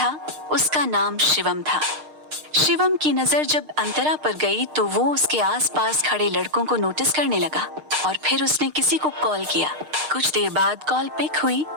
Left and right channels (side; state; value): left; late; 6.5 ms